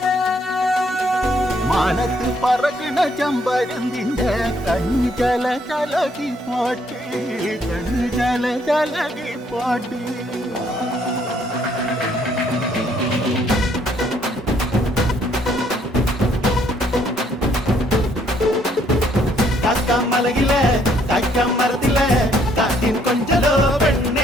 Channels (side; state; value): both; normal; correlation 0.67